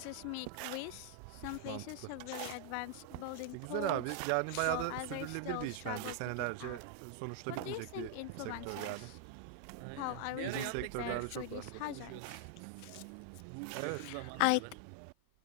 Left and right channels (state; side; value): different; both; correlation 0.00